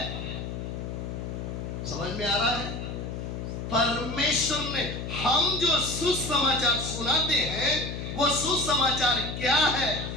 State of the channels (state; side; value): noise; left; hum, 6 dB below the sound